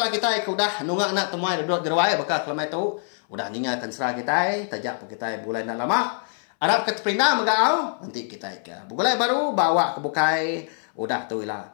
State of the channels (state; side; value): silent; right; 62 dB below the other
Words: kita udah nungak anak temuan duduk derwai bakal kelama itu udah ninggalkan serah kita tajak kita bulan nak lama Arab ke terpindah megau nanti kita ke bulan baru bawa ke bukai udah tu